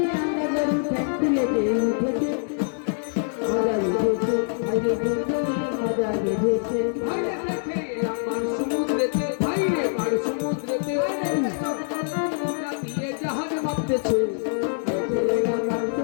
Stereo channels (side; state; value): right; silent; digital silence